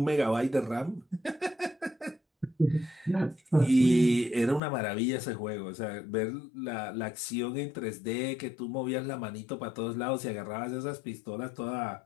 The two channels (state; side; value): drops out; right; at 4.6 s